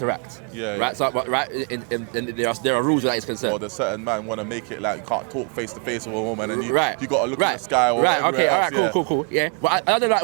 Right. So, and there are rules where that is concerned. Or there's certain man want to make it like you can't talk face to face with a woman, and you got to look in the sky or okay, else. All right, cool. Yeah, but I don't like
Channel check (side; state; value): left; quieter; 38.9 dB